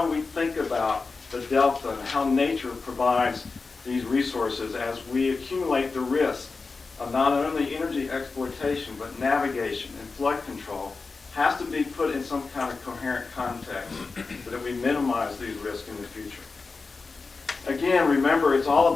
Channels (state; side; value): quieter; right; 4.2 dB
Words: we think about the delta and how nature provides these resources as we accumulate the risk of not only energy exploitation but navigation and flood control has to be put in some kind of coherent context so that we minimize these risks in the future. Again, remember, it's all